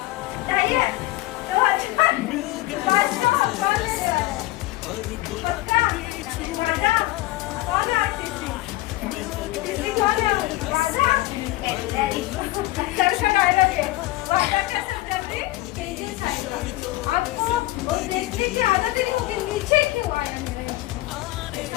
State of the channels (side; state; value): right; quieter; 18.0 dB